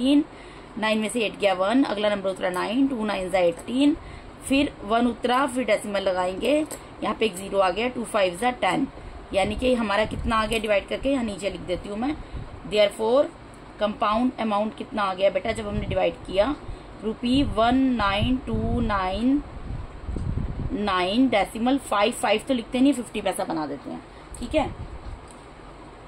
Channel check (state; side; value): identical; both; correlation 1.00